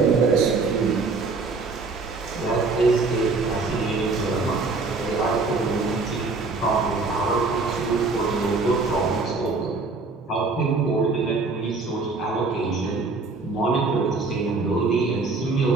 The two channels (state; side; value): quieter; left; 3.9 dB